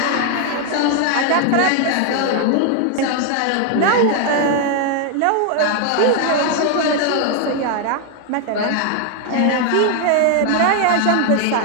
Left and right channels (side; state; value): both; different; correlation 0.01